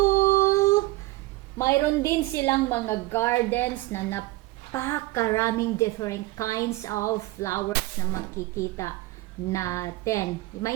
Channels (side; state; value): left; quieter; 19.6 dB